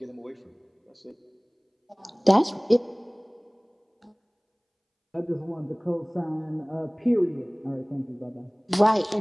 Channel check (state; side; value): identical; both; correlation 1.00